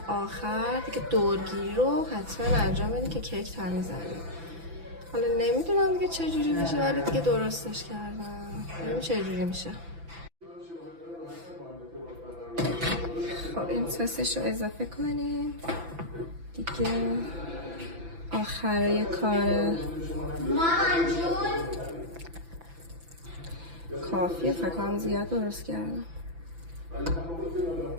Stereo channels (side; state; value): left; late; 6.0 ms